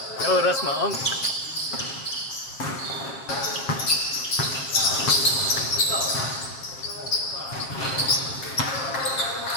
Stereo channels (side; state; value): right; late; 7.5 ms